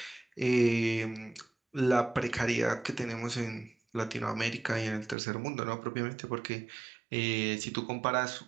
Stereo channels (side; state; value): left; drops out; at 5.2 s